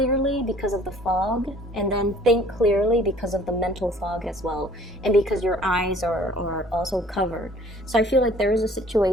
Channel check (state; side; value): normal; both; correlation 0.54